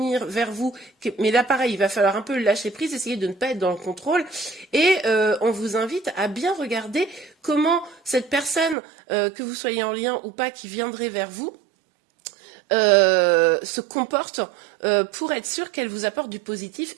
vers vous, mais là pareil, il va falloir un peu lâcher prise, essayer de ne pas être dans le contrôle, et on vous invite à bien regarder comment cette personne, que vous soyez en lien ou pas, qui viendrait vers vous, se comporte pour être sûr qu'elle vous apporte du positif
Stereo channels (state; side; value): drops out; left; at 8.8 s